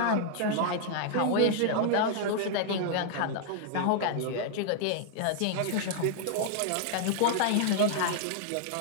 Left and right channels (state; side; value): different; both; correlation -0.01